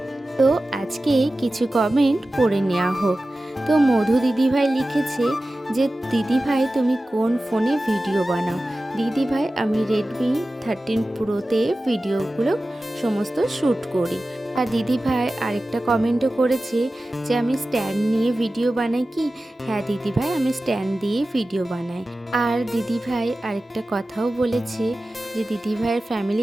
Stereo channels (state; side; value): normal; both; correlation 0.95